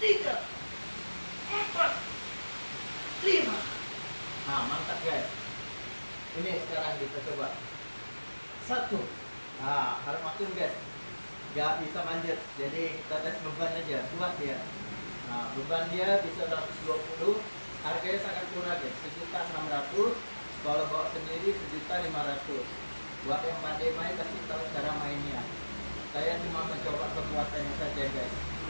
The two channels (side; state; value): both; inverted; correlation -1.00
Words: 3, 4, 5. Nah, mantap guys. Ini sekarang kita coba. 1. Nah, harus makin guys. Gak bisa manjat, jadi kita tes beban aja, kuat dia. Nah, beban dia bisa 120, harganya sangat murah guys, 1.600. Kalau bawa sendiri 1.500. Buat yang pandai main pasti tahu cara mainnya. Saya cuma mencoba kekuatannya saja guys.